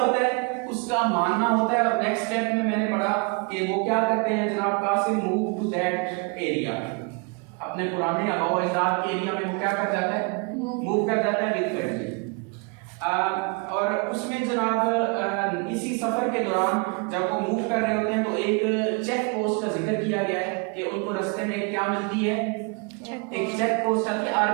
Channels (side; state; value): left; quieter; 32.6 dB